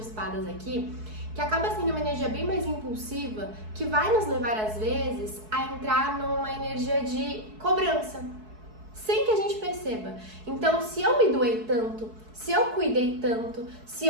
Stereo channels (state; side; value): late; left; 4.6 ms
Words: aqui, que acaba sendo uma energia bem mais impulsiva, que vai nos levar às vezes a entrar numa energia de cobrança, sem que a gente perceba. Então, se eu me doei tanto, se eu cuidei tanto, se